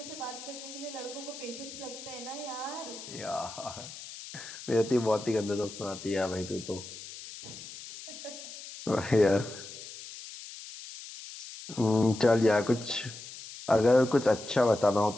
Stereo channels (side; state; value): left; noise; hiss, 13 dB below the sound